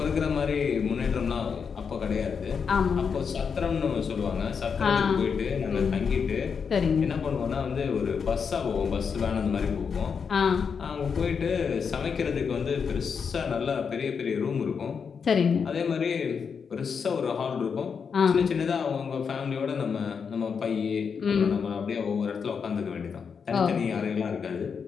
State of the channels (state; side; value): quieter; right; 6.2 dB